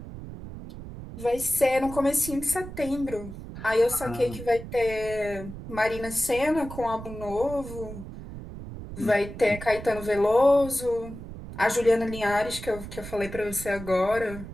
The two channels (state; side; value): noise; right; rumble, 11 dB below the sound